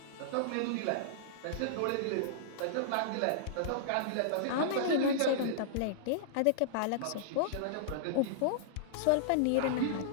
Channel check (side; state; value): both; different; correlation -0.02